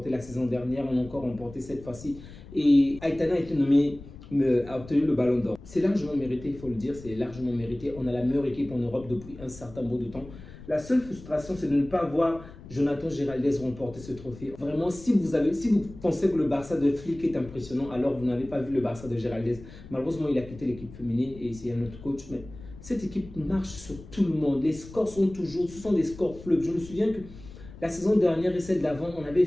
la saison dernière, on a encore remporté cette fois-ci. Et Aitana a été nommée, a obtenu le ballon d'or. C'est largement mérité, il faut le dire, c'est largement mérité. On a la meilleure équipe en Europe depuis un certain bout de temps. La seule frustration, c'est de ne pas voir Jonathan Giraldez remporter ce trophée. Vraiment, si vous pensez que le Barça de Flick est impressionnant, alors vous n'avez pas vu le Barça de Giraldez. Malheureusement, il a quitté l'équipe féminine et c'est un autre coach. Mais cette équipe marche sur tout le monde. Les scores sont toujours, ce sont des scores fleuves. Je me souviens que la saison dernière et celle d'avant, on avait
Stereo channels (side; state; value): left; noise; rumble, 17 dB below the sound